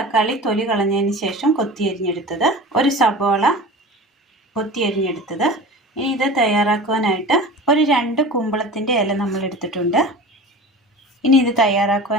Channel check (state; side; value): normal; both; correlation 0.35